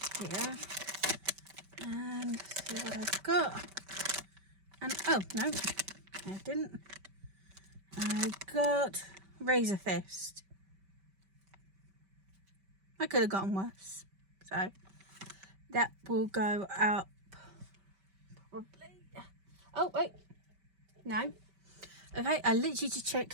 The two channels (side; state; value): left; late; 5.2 ms